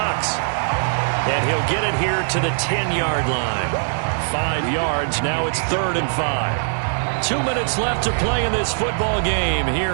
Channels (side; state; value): left; silent; digital silence